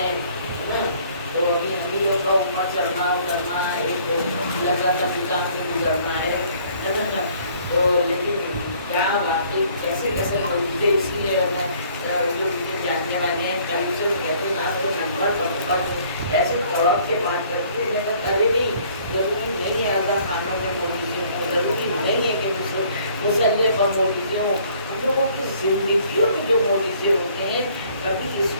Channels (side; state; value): both; inverted; correlation -0.59